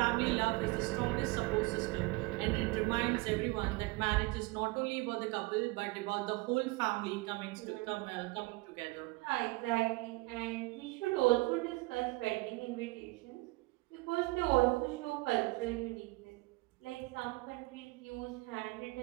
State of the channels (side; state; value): left; quieter; 23.3 dB